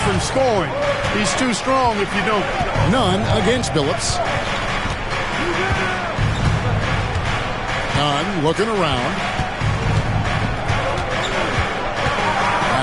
scoring. He's too strong if you don't. Nunn against Billups. Nunn looking around.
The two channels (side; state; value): both; identical; correlation 1.00